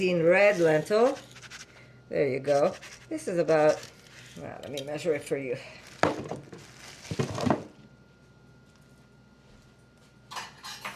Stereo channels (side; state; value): both; identical; correlation 1.00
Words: red lentil. There you go. This is about, well, let me measure it for you.